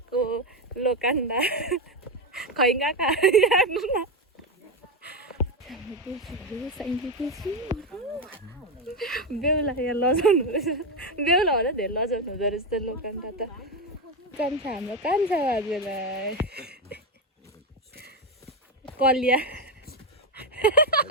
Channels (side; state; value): both; normal; correlation 0.10